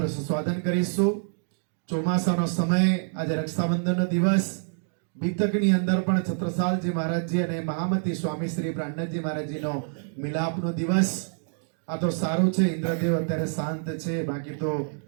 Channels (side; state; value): left; silent; digital silence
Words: રસસ્વાદન કરીશું। ચોમાસાનો સમય આજે રક્ષાબંધનનો દિવસ બીતકની અંદર પણ છત્રસાલજી મહારાજજી અને મહામતી સ્વામી શ્રી પ્રાણનાથજી મહારાજજીનો મિલાપનો દિવસ। આ તો સારું છે ઇન્દ્રદેવ અત્યારે શાંત છે બાકી તો